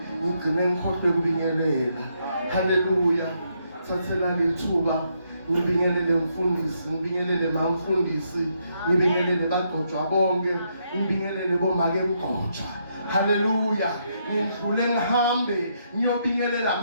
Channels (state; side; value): inverted; both; correlation -0.77